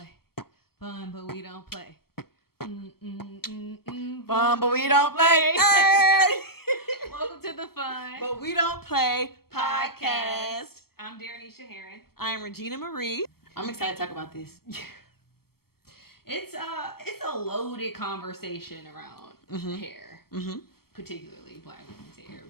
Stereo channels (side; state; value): right; late; 0.95 ms